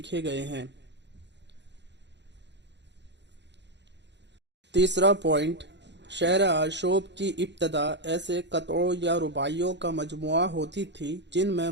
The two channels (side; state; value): left; late; 0.51 ms